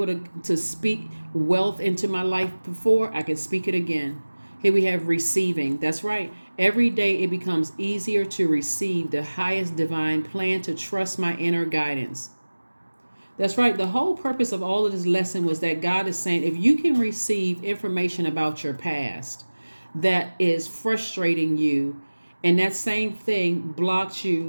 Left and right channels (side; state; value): both; inverted; correlation -1.00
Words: to speak wealth into my life before, I can speak it again. Here we have receiving. That's right. Every day it becomes easier to receive the highest divine plan, to trust my inner guidance. That's right. The whole purpose of all of this lesson was that God is saying, if you can receive information about your past that is frustrating you, and that same thing blocks